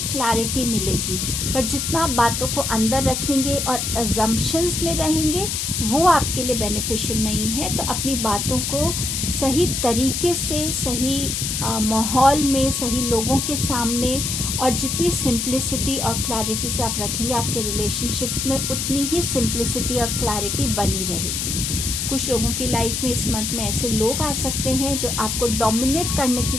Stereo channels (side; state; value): left; noise; hiss, 1 dB below the sound